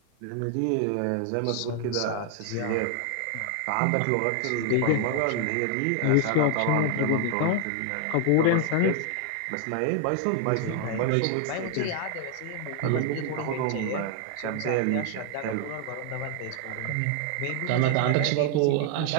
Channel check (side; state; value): both; different; correlation 0.00